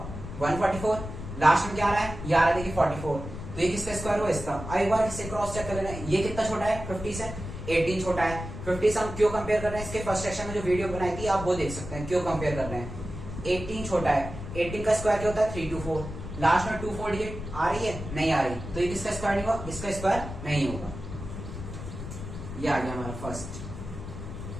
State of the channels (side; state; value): left; noise; rumble, 9 dB below the sound